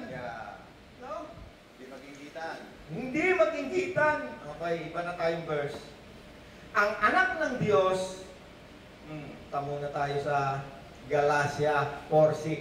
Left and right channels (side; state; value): both; identical; correlation 1.00